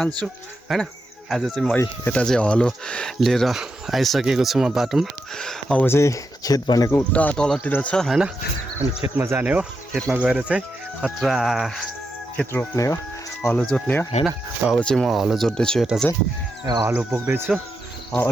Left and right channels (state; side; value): normal; both; correlation 0.85